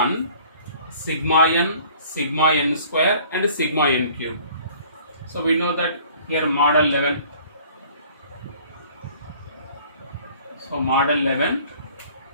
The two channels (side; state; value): both; inverted; correlation -0.53